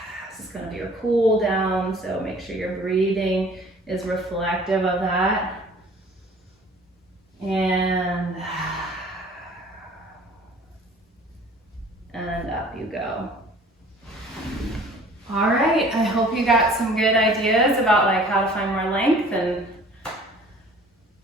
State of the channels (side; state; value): both; normal; correlation 0.50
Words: This is gonna be your cool down, so make sure your breathing is reflective of that. And up you go. All right, I hope you got some good ideas about like how to find more length, and